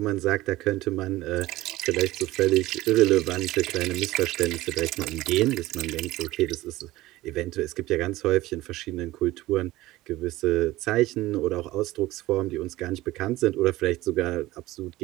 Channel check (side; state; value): left; quieter; 17.5 dB